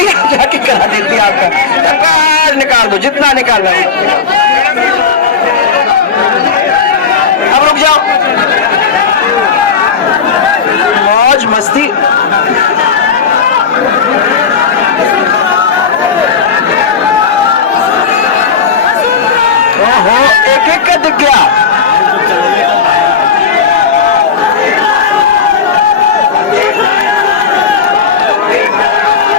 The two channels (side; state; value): right; quieter; 6.4 dB